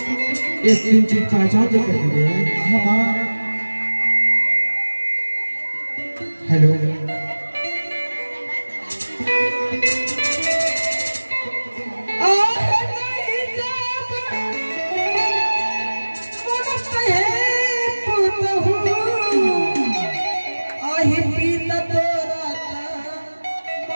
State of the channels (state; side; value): inverted; both; correlation -1.00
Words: इस 3 चीज पहचान के करके गए? हाँ माँ। हेलो